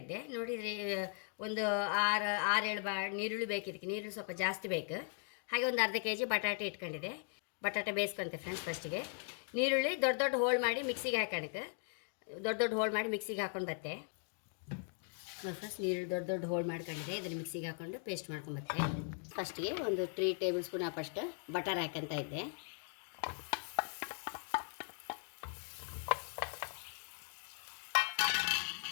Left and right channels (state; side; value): silent; right; 52 dB below the other